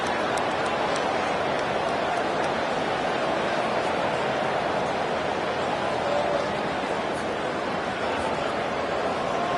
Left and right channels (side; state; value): both; identical; correlation 1.00